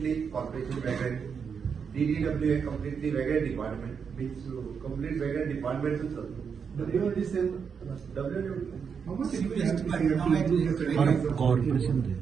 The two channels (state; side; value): quieter; left; 6.4 dB